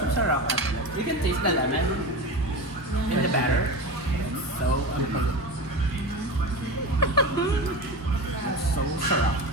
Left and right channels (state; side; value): normal; both; correlation 0.26